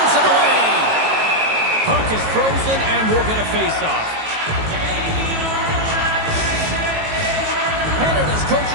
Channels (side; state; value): left; late; 18 ms